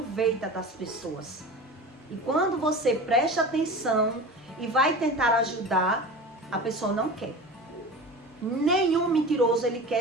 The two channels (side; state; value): both; normal; correlation 0.33